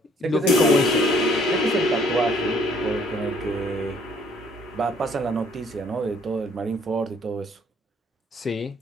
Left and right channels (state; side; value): normal; both; correlation 0.62